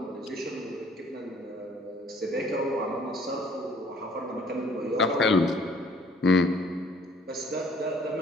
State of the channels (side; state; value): both; normal; correlation 0.58